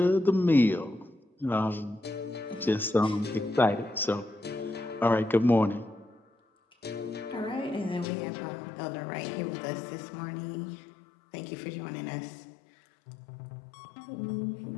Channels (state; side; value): drops out; right; at 8.1 s